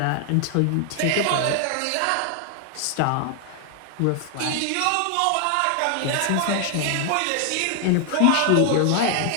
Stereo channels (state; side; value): different; both; correlation 0.00